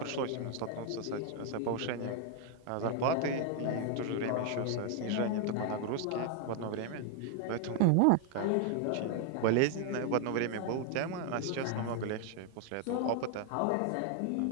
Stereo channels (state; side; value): different; both; correlation 0.00